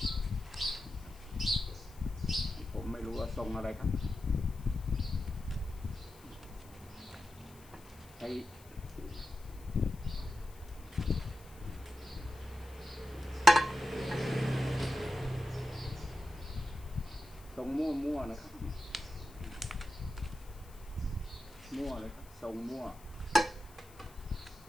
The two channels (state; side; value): noise; left; hiss, 23 dB below the sound